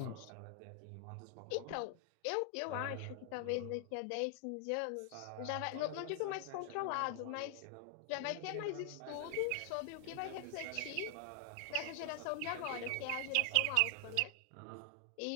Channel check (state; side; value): different; both; correlation 0.00